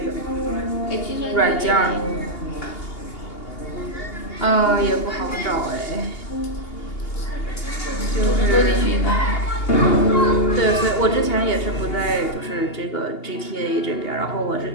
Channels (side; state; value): right; late; 2.8 ms